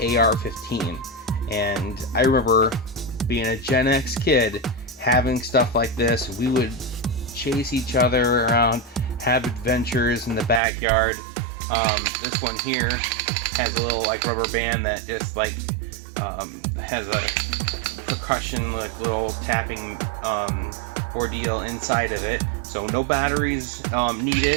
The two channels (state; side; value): drops out; left; at 10.6 s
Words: AR-15. And I remember being a Gen X kid having stuff like this. We would chase each other around, have adventures in the backyard. This one here has a little like rubber band that just like has a percussion, like little tapping ordeal inside of it. So no batteries